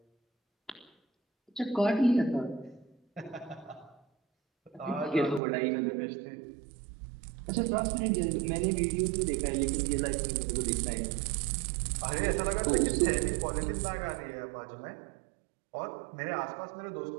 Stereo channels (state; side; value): drops out; left; at 5.4 s